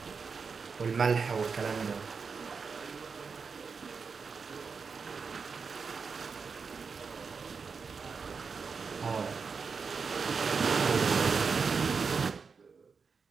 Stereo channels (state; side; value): quieter; left; 5.3 dB